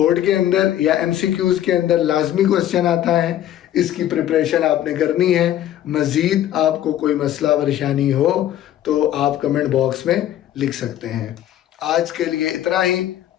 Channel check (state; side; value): quieter; right; 12.0 dB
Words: के अंदर या एमसीक्यूज के अंदर लाजमी क्वेश्चन आता है। इसकी प्रिपरेशन आपने करनी है। मजीद आपको कोई मसला परेशानी हो तो आप कमेंट बॉक्स में लिख सकते हैं। आज के लिए इतना ही।